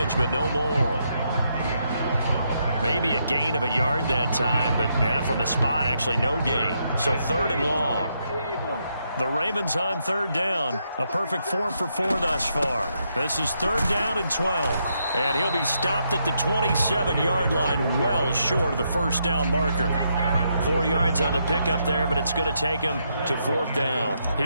but no more. Maybe a gain of a yard that time, but from the spot, actually no gain. So 3rd and long. The Ravens on 3rd down. A perfect 4 for 4 thus far. This is 3rd down and 12. And he'll be stopped at the 27-yard line, well short of the 1st down marker. 4 yards on the pickup there, but it's going to take him to 4th down.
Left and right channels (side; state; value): both; inverted; correlation -0.78